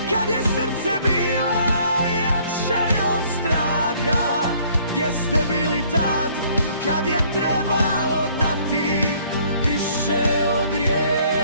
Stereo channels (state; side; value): inverted; both; correlation -0.60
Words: kad je srce bilo jače od straha? Gdje ste bili tad, kad je trebalo dati više od